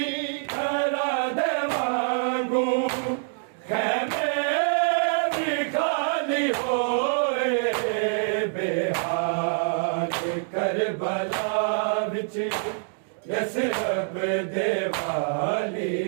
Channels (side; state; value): left; silent; digital silence